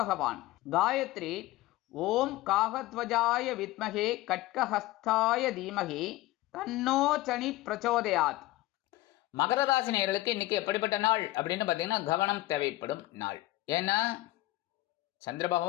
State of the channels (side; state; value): right; quieter; 17.6 dB